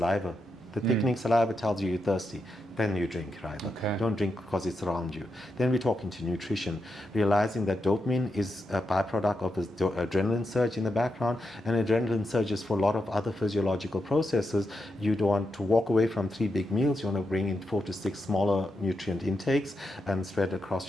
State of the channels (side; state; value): both; normal; correlation 0.86